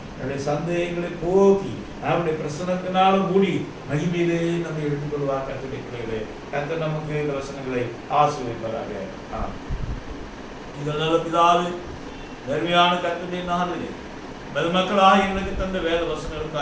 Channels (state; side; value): identical; both; correlation 1.00